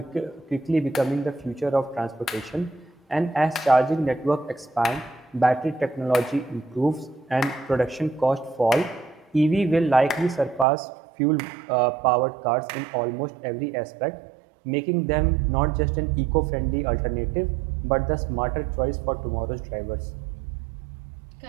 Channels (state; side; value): drops out; left; at 10.7 s